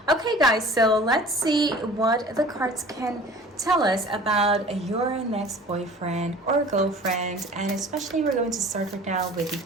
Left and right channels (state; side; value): normal; both; correlation 0.45